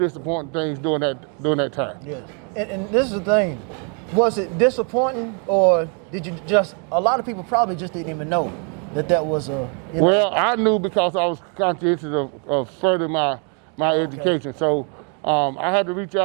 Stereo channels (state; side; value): quieter; left; 38.5 dB